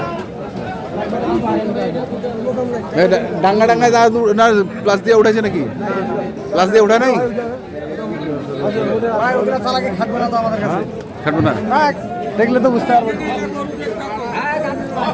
ডাঙ্গা না প্লাস দিয়ে উঠেছে নাকি? প্লাস দিয়ে উঠা নাই? খাটবো না দেখলে তো বুঝতে পারবো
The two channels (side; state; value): both; identical; correlation 1.00